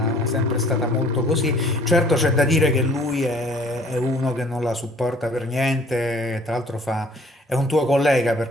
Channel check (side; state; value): both; normal; correlation 0.55